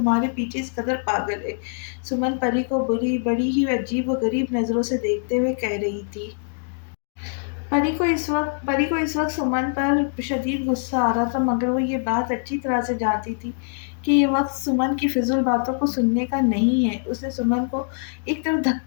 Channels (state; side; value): silent; right; digital silence